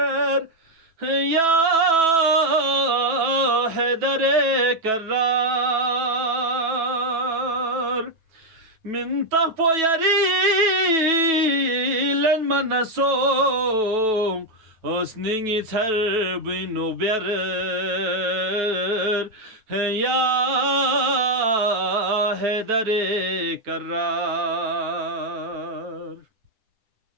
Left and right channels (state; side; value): late; left; 9.2 ms